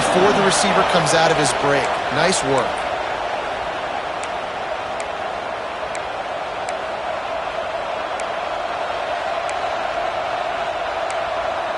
the receiver comes out of his break. Nice work.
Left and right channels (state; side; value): identical; both; correlation 1.00